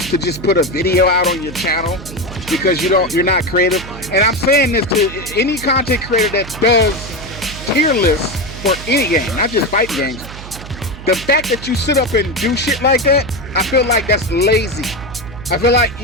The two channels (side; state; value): right; noise; hum, 13 dB below the sound